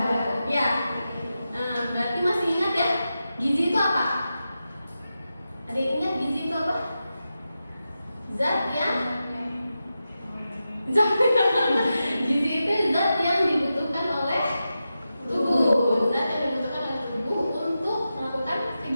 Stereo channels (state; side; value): inverted; both; correlation -0.91